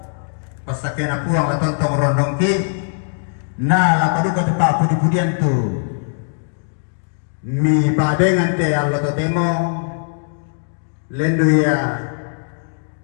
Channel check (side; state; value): right; silent; digital silence